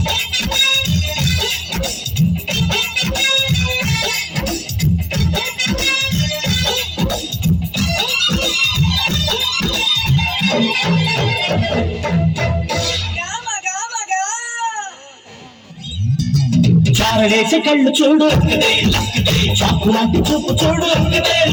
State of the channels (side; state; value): both; identical; correlation 1.00